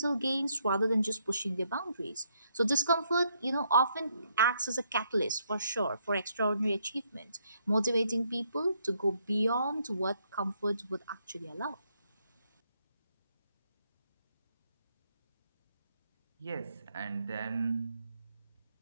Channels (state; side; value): inverted; both; correlation -0.74